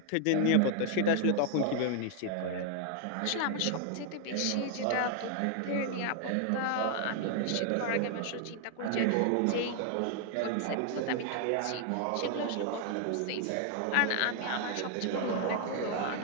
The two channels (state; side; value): different; both; correlation 0.00